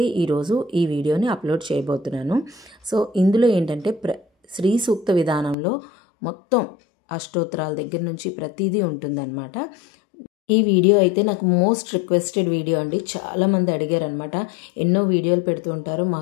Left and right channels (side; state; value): right; drops out; at 5.6 s